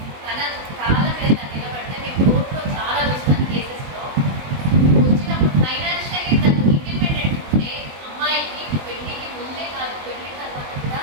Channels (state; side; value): late; left; 22 ms